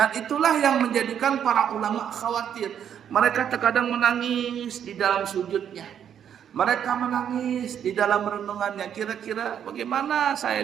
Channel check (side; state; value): left; quieter; 9.0 dB